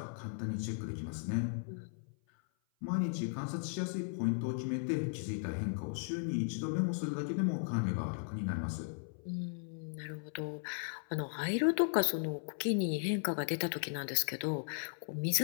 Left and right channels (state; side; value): silent; right; 53 dB below the other